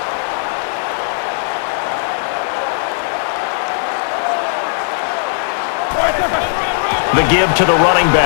The give to the running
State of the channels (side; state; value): right; silent; digital silence